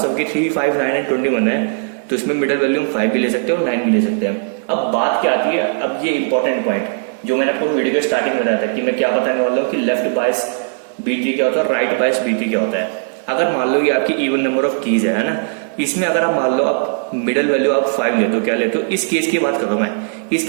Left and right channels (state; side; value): silent; left; digital silence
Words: साथ कि 3, 5, 9 एंड 21 है, तो इसमें मिडिल वैल्यू हम 5 भी ले सकते हैं और 9 भी ले सकते हैं। अब बात क्या आती है, अब ये इंपॉर्टेंट पॉइंट जो मैंने आपको वीडियो के स्टार्टिंग में बताया था कि मैं क्या बताने वाला हूँ कि लेफ्ट बायस बीटी क्या होता है और राइट बायस बीटी क्या होता है। अगर मान लो ये आपकी इवन नंबर ऑफ कीज है ना, इसमें अगर आप मान लो आप मिडिल वैल्यू आप 5 लेते हो, क्या लेते हो, इस केस की बात कर रहा हूं मैं, इस